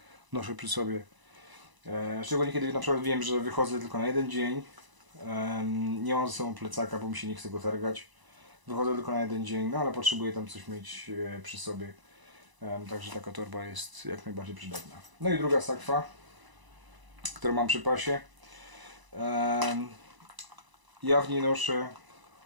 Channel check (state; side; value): late; left; 1.0 ms